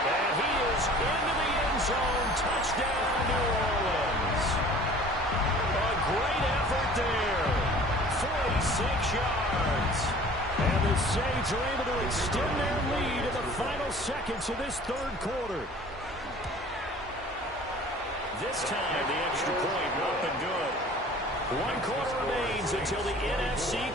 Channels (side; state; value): both; normal; correlation 0.47